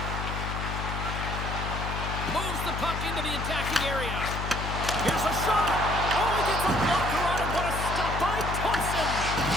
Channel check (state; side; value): noise; left; hum, 4 dB below the sound